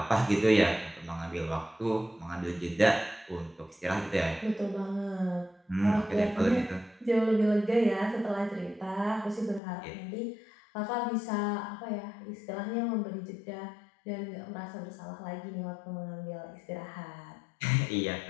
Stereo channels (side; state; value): right; drops out; at 9.6 s